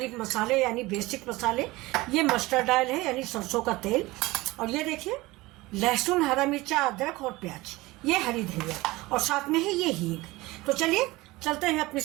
मसाले यानी बेसिक मसाले, ये मस्टर्ड ऑयल है यानी सरसों का तेल, और ये देखिए लहसुन, हरा मिर्चा, अदरक और प्याज, ये हरी धनिया, और साथ में है ये हींग। तो चलिए चलते हैं अपनी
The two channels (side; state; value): left; quieter; 20.5 dB